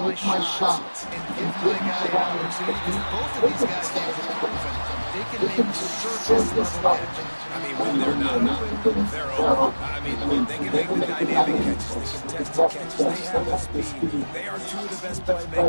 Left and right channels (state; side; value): inverted; both; correlation -1.00